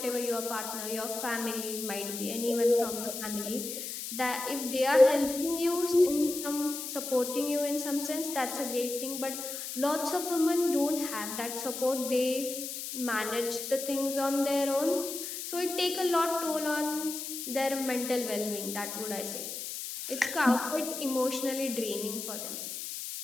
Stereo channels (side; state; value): left; noise; hiss, 6 dB below the sound